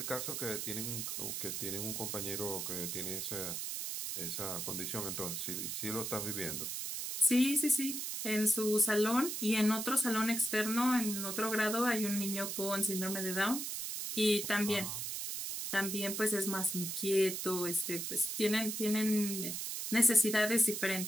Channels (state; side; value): noise; right; hiss, 4 dB below the sound